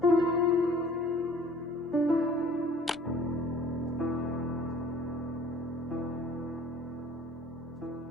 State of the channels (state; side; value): normal; both; correlation 0.51